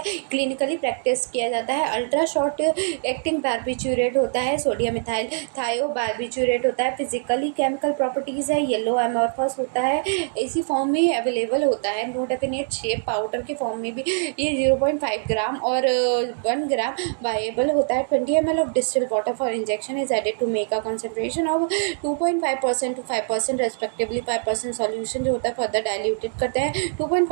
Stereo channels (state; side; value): silent; left; digital silence